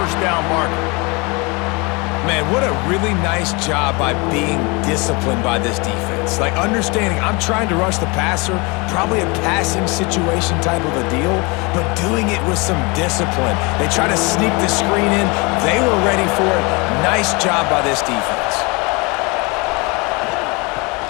down marker. Man, what a really nice job by being disciplined by this defense. Like, understanding I'm trying to rush the passer, probably a passing situation type of a deal, but doing it with some discipline. They try to sneak the screen in. They were ready for it. Nice job by this defense.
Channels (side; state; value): right; quieter; 27.9 dB